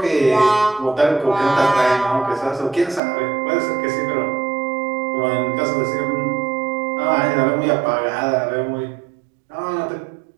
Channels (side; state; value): left; drops out; at 3.0 s